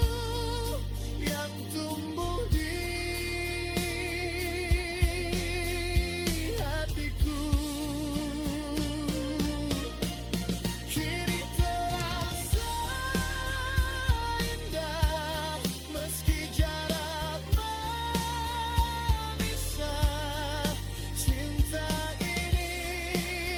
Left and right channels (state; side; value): identical; both; correlation 1.00